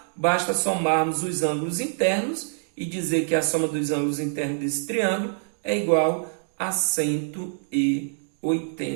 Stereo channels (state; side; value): silent; left; digital silence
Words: basta somarmos os ângulos internos e dizer que a soma dos ângulos internos desse triângulo é igual a